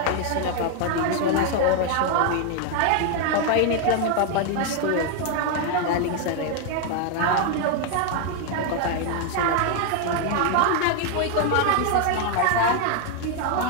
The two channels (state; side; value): different; both; correlation 0.00